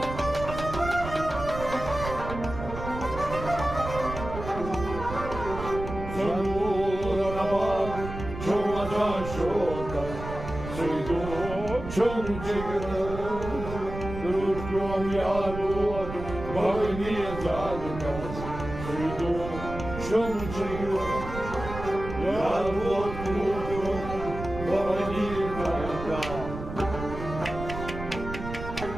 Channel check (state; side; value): noise; right; rumble, 9 dB below the sound